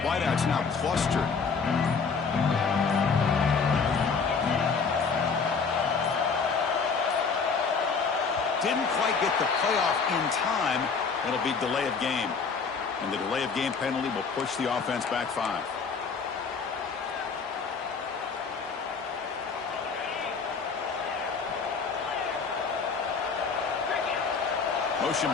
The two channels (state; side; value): quieter; right; 5.3 dB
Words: Wideouts now clustered. Didn't quite get the playoff in time. It'll be delay of game. And the delay of game penalty will push the offense back 5. Motion